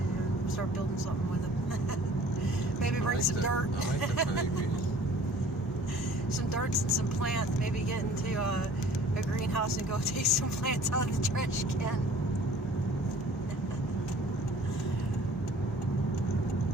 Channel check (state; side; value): normal; both; correlation 0.50